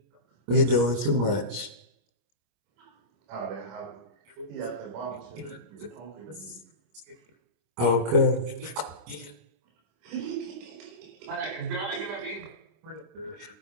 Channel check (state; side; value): late; left; 26 ms